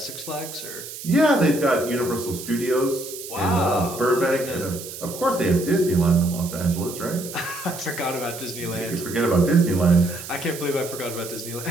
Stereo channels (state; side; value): noise; right; hiss, 11 dB below the sound